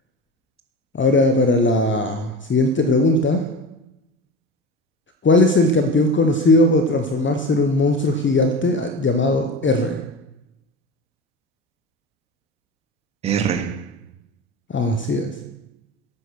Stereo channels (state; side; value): normal; both; correlation 0.29